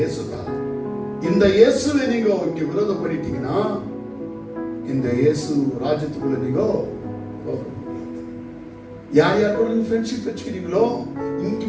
தான். இந்த இயேசுவை நீங்க இங்க விரோதம் பண்ணிட்டீங்கன்னா, இந்த இயேசு ராஜ்யத்துக்குள்ள நீங்க యారు కూడా ఫ్రెండ్షిప్ வச்சுக்கிறீங்களோ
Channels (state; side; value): identical; both; correlation 1.00